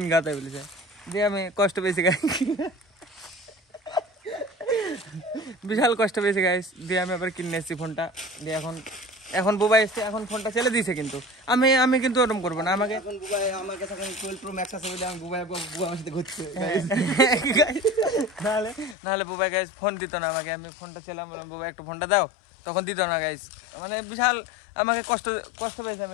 গাতে বলেছে। দিয়ে আমি কষ্ট পেয়েছি গাই, বিশাল কষ্ট পেয়েছি গাইস। দিয়ে আমি আবার কিনে এসেছি ফোনটা। দিয়ে এখন বুবাই এসছে, এখন ফোনটা ছেলে দিয়েছে, কিন্তু আমি কিন্তু ওরকম করবো না। আমাকে নাহলে বুবাই গাইস ফোন দিত না আমাকে। আমি ফোনটা ছিলাম, বললাম বুবাই একটু ফোনটা দাও, তখন দিত না গাইস। মানে বিশাল আমাকে কষ্ট পেয়েছে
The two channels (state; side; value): drops out; right; at 18.9 s